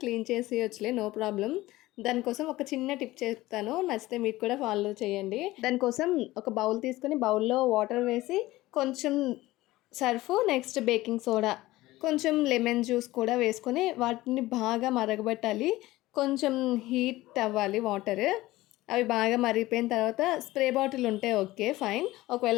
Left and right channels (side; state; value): right; quieter; 17.8 dB